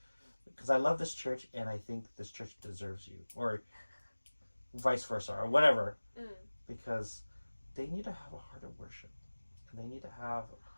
because I love this church, and I think this church deserves you, or vice versa, or whatever, because they need to have a heart of worship, and they need to have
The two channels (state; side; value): inverted; both; correlation -1.00